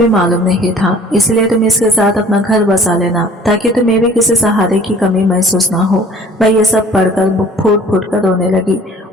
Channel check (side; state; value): both; normal; correlation 0.51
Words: मालूम नहीं था। इसलिए तुम इसके साथ अपना घर बसा लेना, ताकि तुम्हें भी किसी सहारे की कमी महसूस ना हो। मैं ये सब पढ़कर फूट फूट कर रोने लगी।